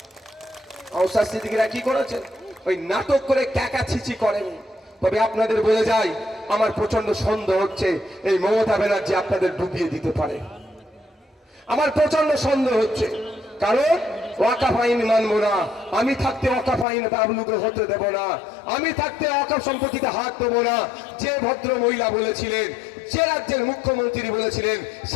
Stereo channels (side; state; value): right; drops out; at 16.9 s